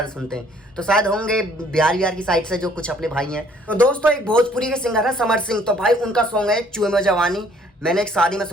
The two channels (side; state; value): both; normal; correlation 0.60